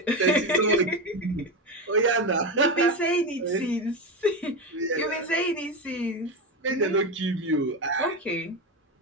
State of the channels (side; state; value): both; normal; correlation 0.16